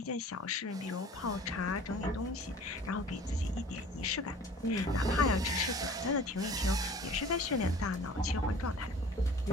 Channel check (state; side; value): normal; both; correlation 0.46